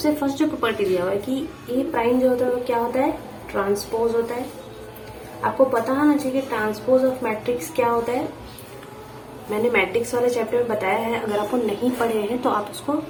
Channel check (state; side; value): identical; both; correlation 1.00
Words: फर्स्ट जो प्रॉपर्टी दिया हुआ है कि ए प्राइम जो होता है वो क्या होता है, ट्रांसपोज होता है। आपको पता होना चाहिए कि ट्रांसपोज ऑफ मैट्रिक्स क्या होता है। मैंने मैट्रिक्स वाले चैप्टर में बताया है, अगर आपको नहीं पढ़े हैं तो आप उसको